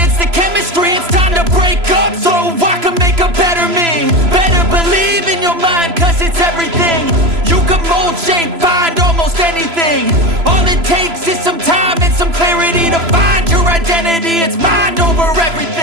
the chemistry. It's time to break up so I can make a better me. Better believe in your mind, cause it's everything. You can mold, shape, find almost anything. All it takes is some time and some clarity to find your identity. It's mind over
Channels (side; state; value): left; late; 3.0 ms